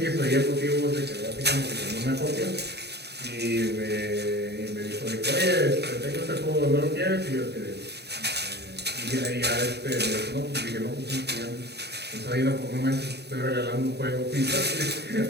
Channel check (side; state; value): left; late; 0.48 ms